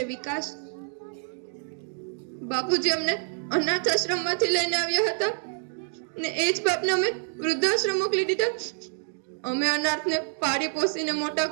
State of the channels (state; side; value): silent; left; 60 dB below the other